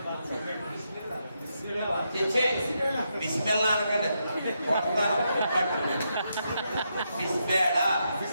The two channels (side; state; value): both; inverted; correlation -0.82